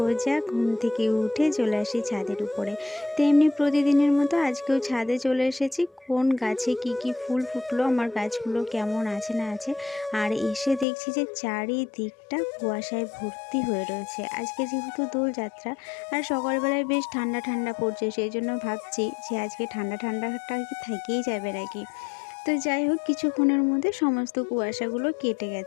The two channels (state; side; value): drops out; right; at 10.9 s